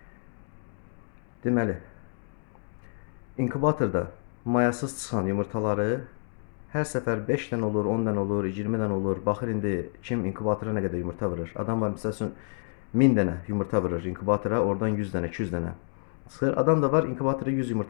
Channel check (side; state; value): right; silent; digital silence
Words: Deməli, inkubatorda mayasız çıxan yumurtaları hər səfər 5 dənə olur, 10 dənə olur, 20 dənə olur. Baxır indi kim inkubatora nə qədər yumurta vurur. Adam var məsəl üçün 1000 dənə yumurta vurur inkubatora, oradan 100 dənə, 200 dənə çıxır. Adam da var inkubatora 100